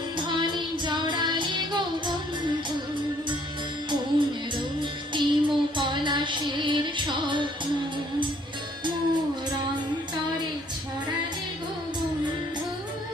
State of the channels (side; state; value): both; normal; correlation 0.62